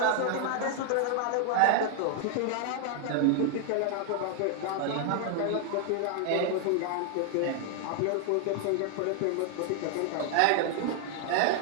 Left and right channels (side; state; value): both; different; correlation 0.00